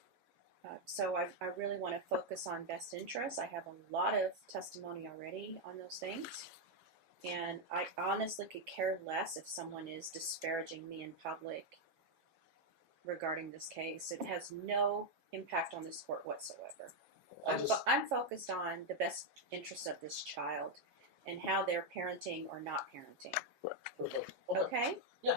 So I really want to focus on best interests. I have a lot of testimony already on those things. And I honestly could care less if someone is disparaging me in public regarding this case. It has no impact on this court whatsoever. I'm focused on the best interests of this child and how they're parenting or not parenting. Perfect. Okay?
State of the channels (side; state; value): left; late; 7.3 ms